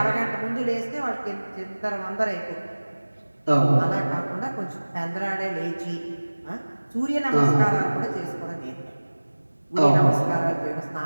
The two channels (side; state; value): both; inverted; correlation -1.00